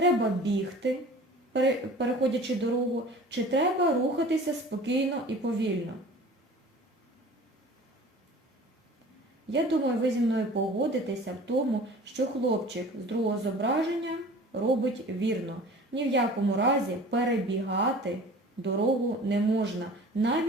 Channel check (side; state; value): both; normal; correlation 0.43